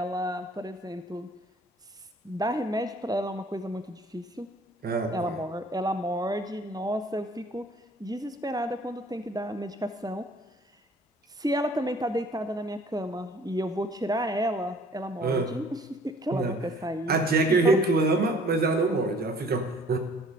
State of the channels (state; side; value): normal; both; correlation 0.54